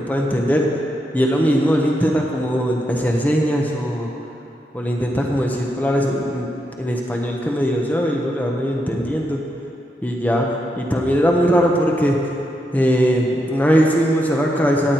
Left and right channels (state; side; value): normal; both; correlation 0.82